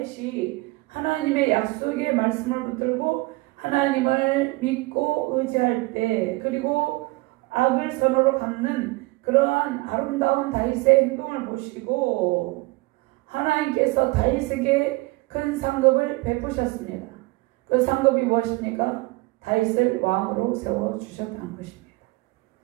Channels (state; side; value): quieter; left; 23.1 dB